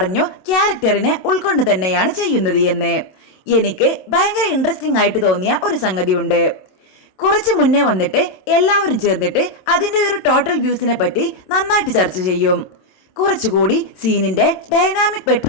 ക്യാരക്ടറിനെ ഉൾക്കൊണ്ട് തന്നെയാണ് ചെയ്യുന്നത് എന്ന്. എനിക്ക് ഭയങ്കര ഇൻട്രസ്റ്റിംഗ് ആയിട്ട് തോന്നിയ ഒരു സംഗതിയുണ്ട്. കുറച്ച് മുന്നേ വന്നിട്ട് എല്ലാവരും ചേർന്നിട്ട് അതിന്റെ ഒരു ടോട്ടൽ വ്യൂസിനെ പറ്റി നന്നായിട്ട് ചർച്ച ചെയ്യും. കുറച്ചുകൂടി സീനിന്റെ ഡൈനാമിക്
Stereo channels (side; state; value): right; late; 27 ms